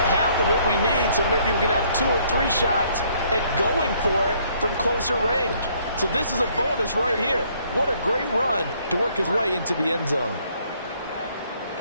of what we need, so maybe we can have 2 or 3 shots at going for it from closer range. So this is a bonus right here. What a great run to work his way into the end zone.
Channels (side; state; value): both; inverted; correlation -0.65